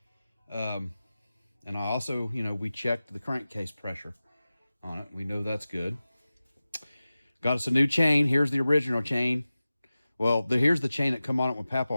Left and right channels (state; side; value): inverted; both; correlation -0.96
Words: And I also, we checked the crankcase pressure on it. We know that's good. Got us a new chain. Here's the original chain. Well, here's the chain that come on it when